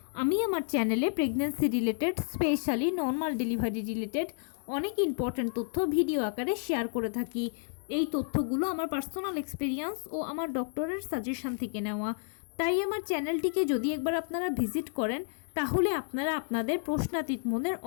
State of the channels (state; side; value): silent; right; 57 dB below the other